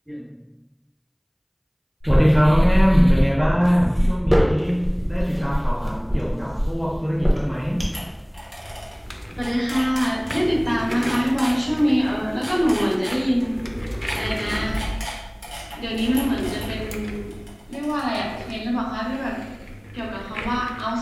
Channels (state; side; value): identical; both; correlation 1.00